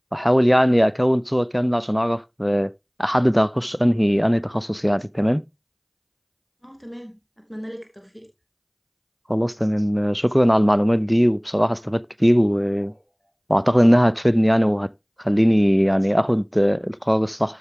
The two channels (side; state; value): both; identical; correlation 1.00